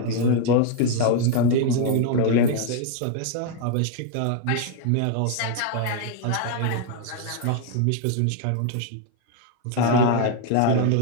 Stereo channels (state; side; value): different; both; correlation 0.00